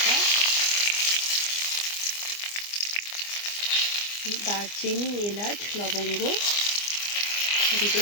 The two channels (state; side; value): late; right; 24 ms